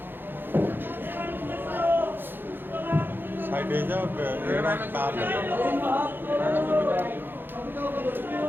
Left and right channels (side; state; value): left; late; 0.098 ms